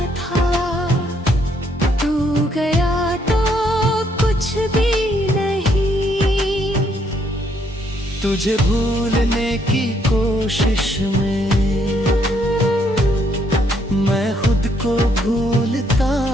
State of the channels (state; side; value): normal; both; correlation 0.71